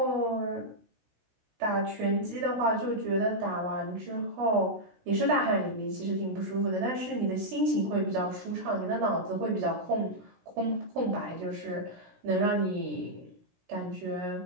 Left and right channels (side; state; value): left; late; 16 ms